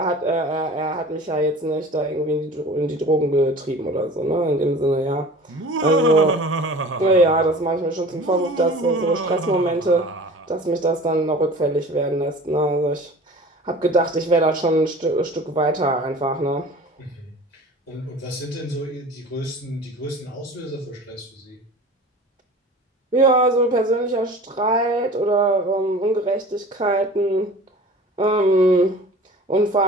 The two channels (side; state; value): both; normal; correlation 0.41